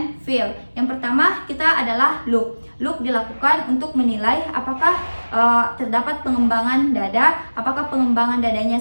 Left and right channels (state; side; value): inverted; both; correlation -1.00